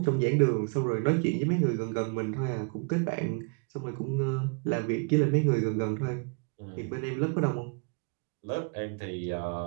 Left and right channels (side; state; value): left; quieter; 35.9 dB